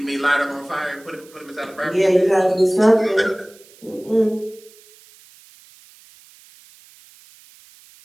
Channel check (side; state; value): right; noise; hiss, 25 dB below the sound